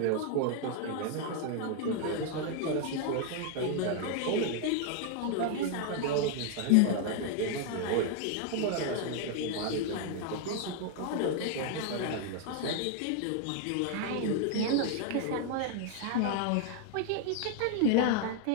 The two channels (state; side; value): different; both; correlation 0.00